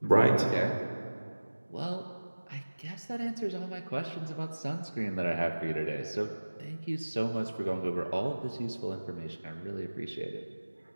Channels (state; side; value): inverted; both; correlation -1.00